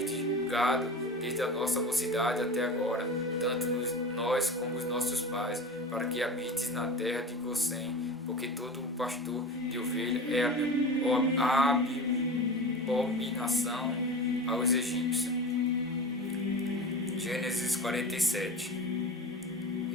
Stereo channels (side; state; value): both; normal; correlation 0.31